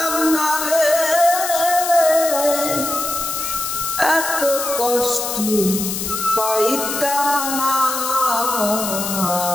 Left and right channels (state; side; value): noise; left; hiss, 4 dB below the sound